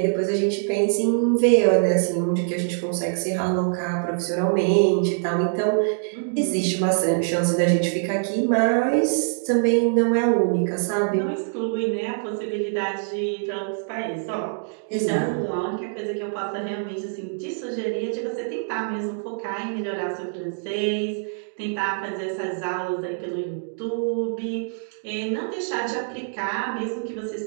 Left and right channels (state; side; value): silent; left; digital silence